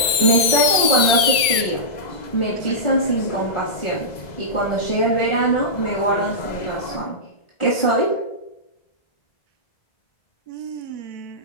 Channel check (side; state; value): right; late; 2.2 ms